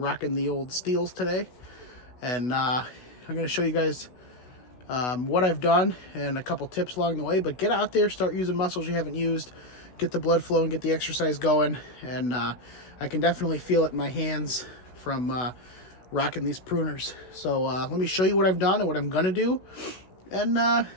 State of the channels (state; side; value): late; right; 16 ms